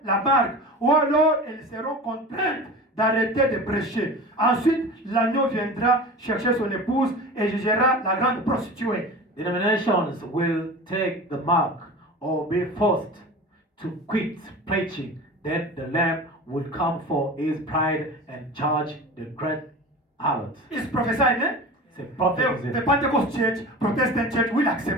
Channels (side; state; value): both; normal; correlation 0.34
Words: la marque ou alors elles seront contraintes d'arrêter de prêcher. Ensuite, l'agneau viendra chercher son épouse et jugera la grande prostituée. Denominations will take the mark or be forced to quit preaching. Then the Lamb will come for his bride and judge the great harlot. It's prophesied, eh? C'est prophétisé. The Pentecost Church, Protestant Church will